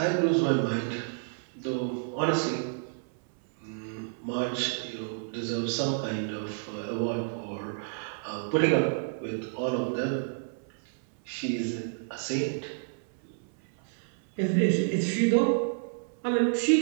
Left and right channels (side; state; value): left; silent; 58 dB below the other